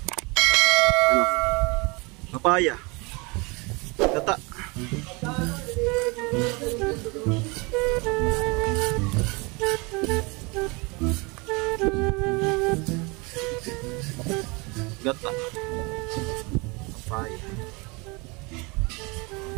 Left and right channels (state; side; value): quieter; left; 27.9 dB